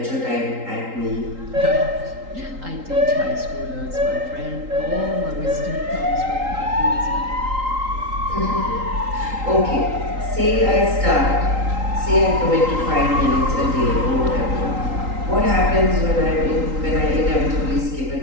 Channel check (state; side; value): late; left; 3.8 ms